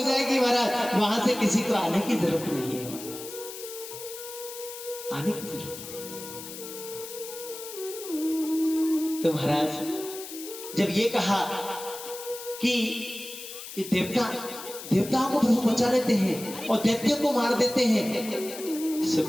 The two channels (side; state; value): left; noise; hiss, 11 dB below the sound